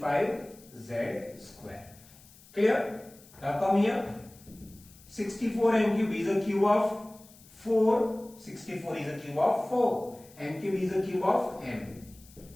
square. Clear? Now come here. 64 m cube is a cube of 4. 64 is a cube of 4. M cube is a cube of m.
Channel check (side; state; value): left; noise; hiss, 24 dB below the sound